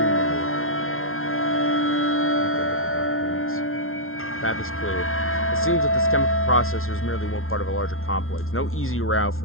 Path is clear. It seems that this chemical processor is merely one part of a larger complex. No easy route for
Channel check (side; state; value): right; late; 0.61 ms